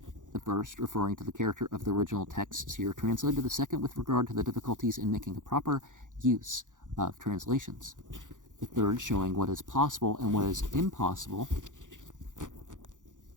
The first referring to the character of the original texts here translated, the second with regard to the difficulties in making a proper use of translations, the third showing what is possible and what is impossible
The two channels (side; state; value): left; late; 0.87 ms